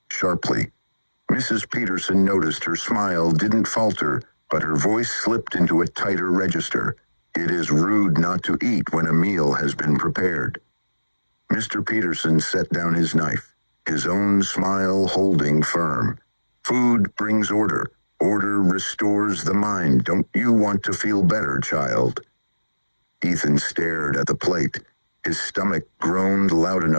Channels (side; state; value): both; inverted; correlation -1.00